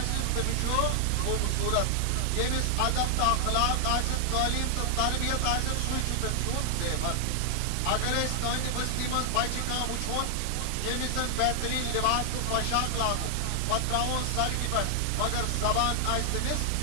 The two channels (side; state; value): both; different; correlation 0.00